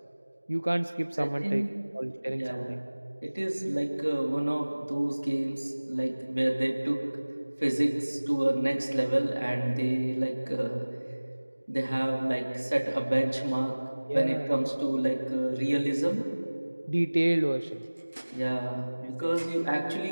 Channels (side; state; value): both; inverted; correlation -1.00